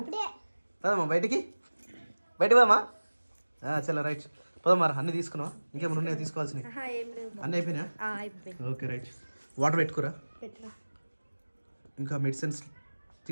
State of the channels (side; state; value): both; inverted; correlation -1.00